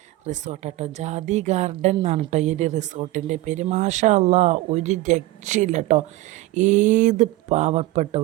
റിസോർട്ടാട്ടോ, ജാതി ഗാർഡൻ എന്നാണ് കേട്ടോ ഈ ഒരു റിസോർട്ടിൻ്റെ പേര്. മാഷാ അല്ലാ, ഒരു രക്ഷയില്ല കേട്ടോ. ഏത്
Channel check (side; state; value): left; quieter; 17.5 dB